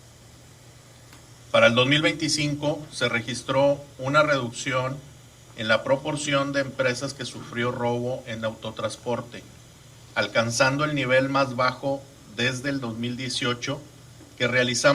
Para el 2025 se registró una reducción en la proporción de empresas que sufrió robo en autotransporte, alcanzando el nivel más bajo desde el 2018, que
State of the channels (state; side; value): identical; both; correlation 1.00